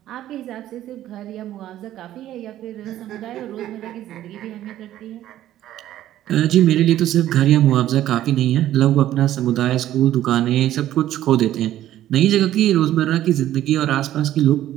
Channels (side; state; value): left; quieter; 12.9 dB